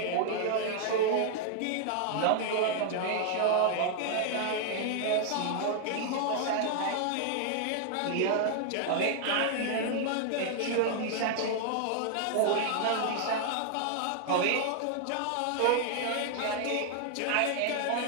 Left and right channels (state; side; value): different; both; correlation 0.00